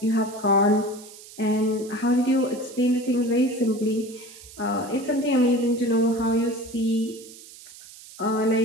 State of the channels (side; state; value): right; noise; hiss, 18 dB below the sound